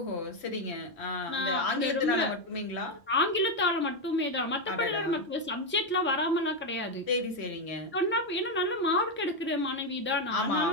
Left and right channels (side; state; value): both; normal; correlation 0.06